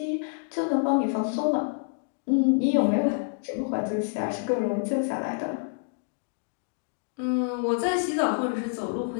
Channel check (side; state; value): right; silent; digital silence